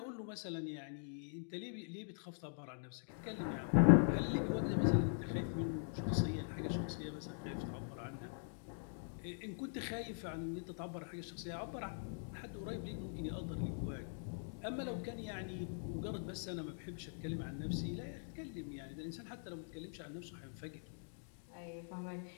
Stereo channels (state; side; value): silent; right; digital silence